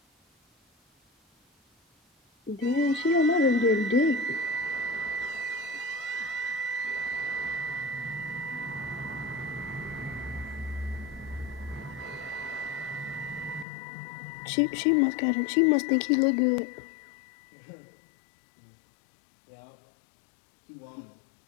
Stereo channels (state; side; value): drops out; right; at 13.7 s